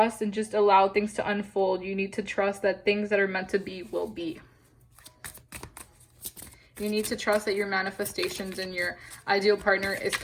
and just allow things to unfold. You need to trust that things that are meant to be will be. You need to trust that your manifestations and your ideal partner is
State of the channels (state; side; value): identical; both; correlation 1.00